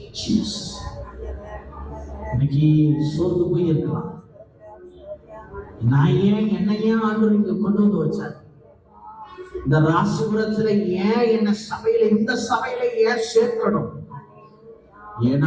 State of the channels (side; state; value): both; identical; correlation 1.00